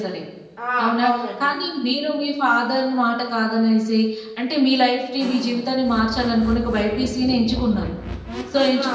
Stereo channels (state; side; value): identical; both; correlation 1.00